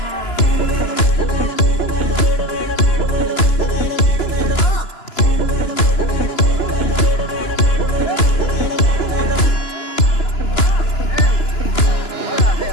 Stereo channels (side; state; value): right; late; 2.9 ms